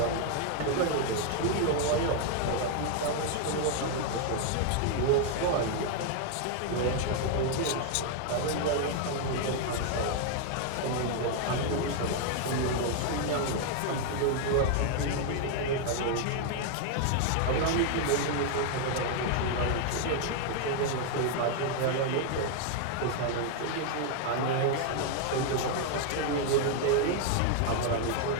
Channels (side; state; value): both; different; correlation 0.00